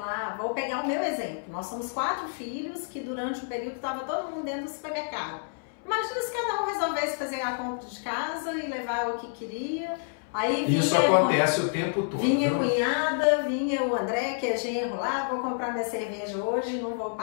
vou pegar o meu exemplo, nós somos 4 filhos que durante um período estava todo mundo dentro do supermercado. Imagina se cada um resolvesse fazer a compra de casa e levar o que queria. Aí isso acontece o tempo todo. Vinha a cunhada, vinha o André, que é genro lá, vou comprar minha cerveja hoje, não vou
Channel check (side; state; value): right; silent; 59 dB below the other